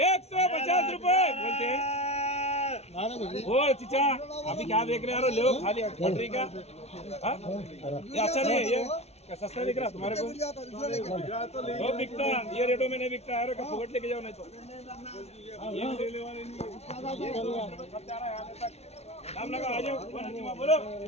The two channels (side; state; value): right; late; 0.31 ms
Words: 150 रुपए बोलते हैं ओ चिचा अभी क्या देख रहे हो ले खाली फटरी का ये अच्छा नहीं है ये क्या सस्ता दिख रहा तुम्हारे को वो बिकता ये रेटों में नहीं बिकता है फुकट लेके जाओ नहीं तो ये ले वाले नाम लगा आ जाओ बोलो